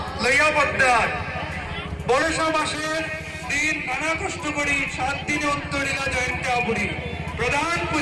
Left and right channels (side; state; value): both; identical; correlation 1.00